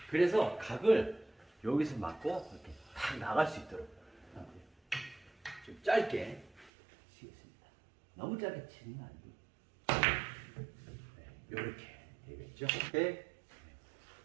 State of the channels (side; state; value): left; drops out; at 6.7 s